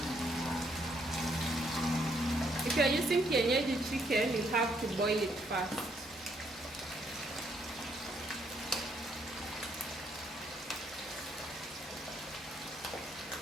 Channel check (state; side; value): normal; both; correlation 0.71